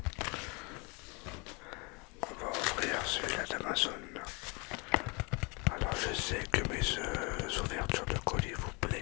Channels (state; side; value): quieter; right; 30.0 dB